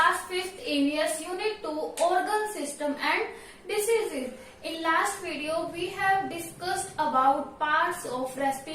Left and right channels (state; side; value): identical; both; correlation 1.00